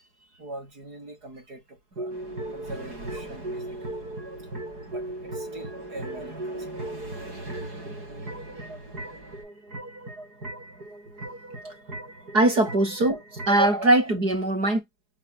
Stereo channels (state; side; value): late; left; 4.8 ms